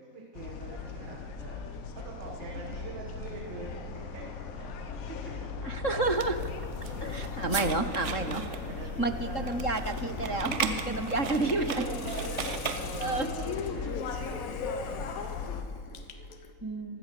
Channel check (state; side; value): late; right; 3.5 ms